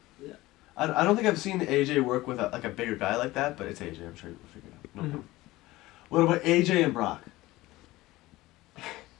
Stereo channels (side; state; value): right; quieter; 18.5 dB